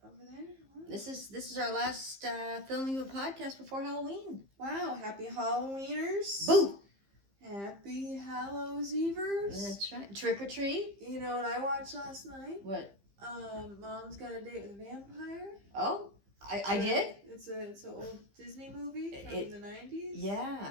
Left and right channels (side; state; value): left; late; 15 ms